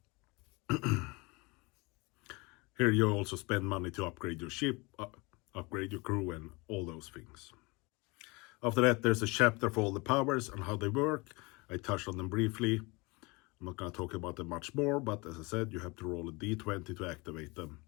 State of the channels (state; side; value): quieter; right; 26.1 dB